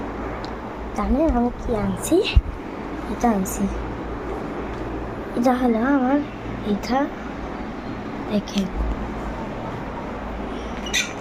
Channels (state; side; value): identical; both; correlation 1.00